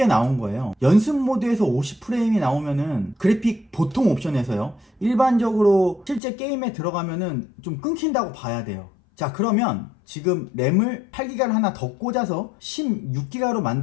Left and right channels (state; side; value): drops out; right; at 6.2 s